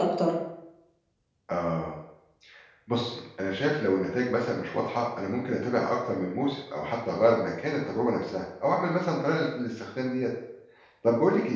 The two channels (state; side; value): identical; both; correlation 1.00